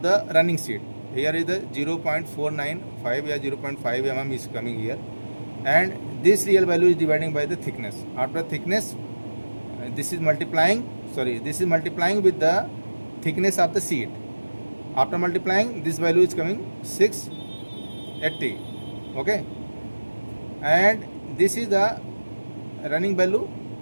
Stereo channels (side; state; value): both; inverted; correlation -1.00